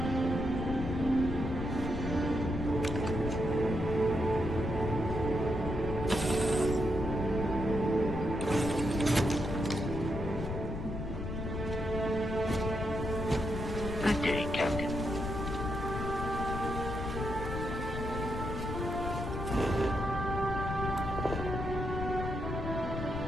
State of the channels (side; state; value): left; noise; rumble, 4 dB below the sound